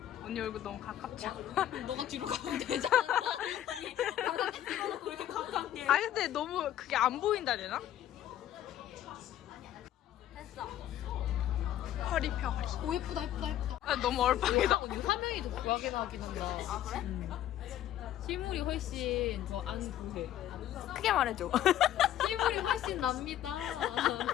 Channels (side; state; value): right; quieter; 12.0 dB